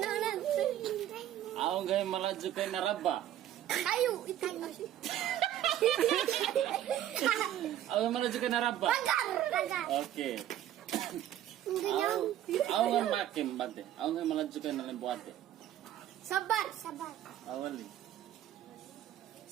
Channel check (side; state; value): left; quieter; 12.0 dB